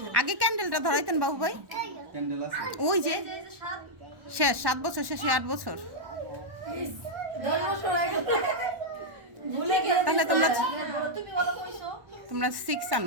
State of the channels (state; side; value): late; left; 1.1 ms